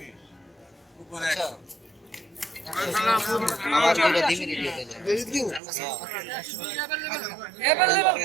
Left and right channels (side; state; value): left; drops out; at 5.6 s